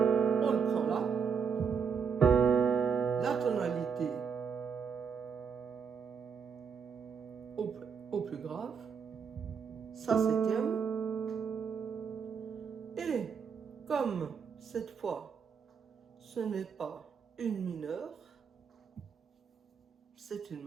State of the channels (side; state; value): left; quieter; 6.5 dB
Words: au plus grave, Sa septième, et comme cette fois ce n'est pas une mineure, c'est une